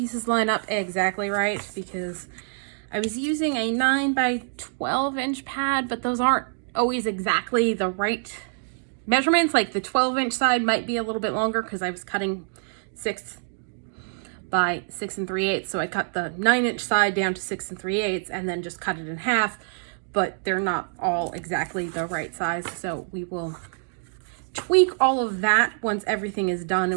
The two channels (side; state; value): left; silent; digital silence